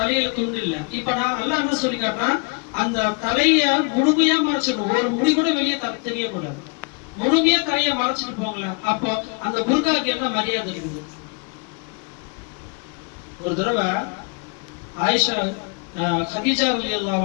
துண்டு இல்ல. இப்ப நான் அல்லாஹ் என்ன சொல்லி காட்டுறான், அந்த தலைய முழுமையா மறைச்சிடணும், ஒரு முடி கூட வெளியே தெரியக்கூடாது. முழுமையா தலைய மறைச்சிட்டு போங்களேன். அப்போ அந்த புர்காக்கு என்ன மரியாதை இருக்குது? ஒரு தடவை ஆயிஷா கதீஜா ரலியல்லாஹு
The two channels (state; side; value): quieter; right; 33.5 dB